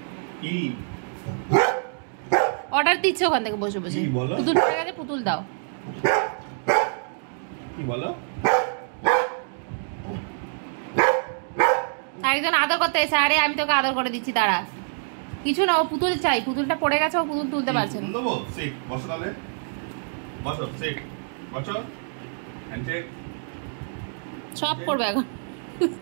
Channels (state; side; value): silent; left; digital silence